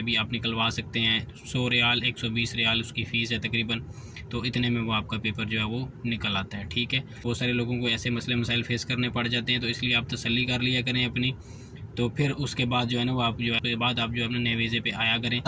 भी आप निकलवा सकते हैं। 100 रियाल 120 रियाल उसकी फ़ीस है तकरीबन, तो इतने में वो आपका पेपर जो है वो निकल आता है, ठीक है। बहुत सारे लोगों को ऐसे मसले मसाइल फेस करने पड़ जाते हैं, तो इसलिए आप तसल्ली कर लिया करें अपनी। तो फिर उसके बाद जो है ना वो आप जो है अपने नए वीज़े पे आया करें,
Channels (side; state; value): both; identical; correlation 1.00